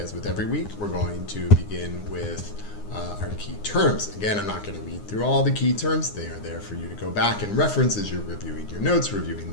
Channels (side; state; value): right; late; 9.7 ms